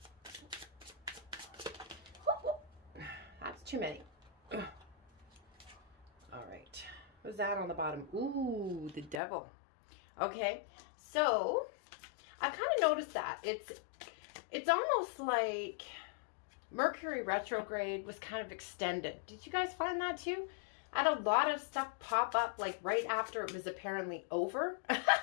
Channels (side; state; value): right; drops out; at 9.2 s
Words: That's too many. All right. What's that on the bottom? Ooh, the devil. Okay, so I kind of noticed that it's almost like Mercury retrograde was kind of extended. Did you guys find that too? I had a lot of stuff pop up like right after it was apparently over.